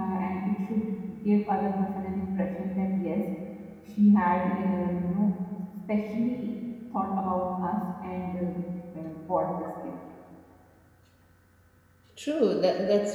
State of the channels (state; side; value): identical; both; correlation 1.00